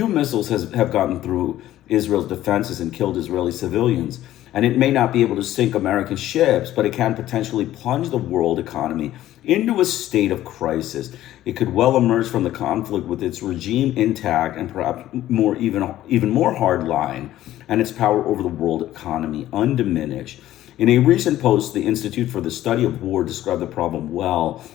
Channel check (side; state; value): right; quieter; 13.7 dB